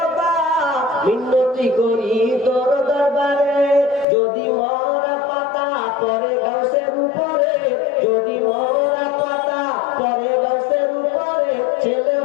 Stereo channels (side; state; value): right; drops out; at 4.0 s